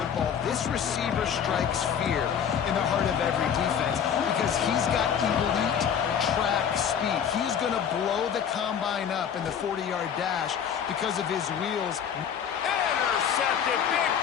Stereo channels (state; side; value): quieter; right; 8.1 dB